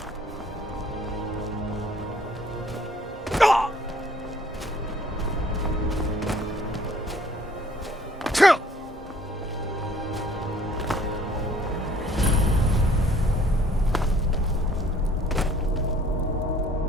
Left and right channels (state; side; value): normal; both; correlation 0.57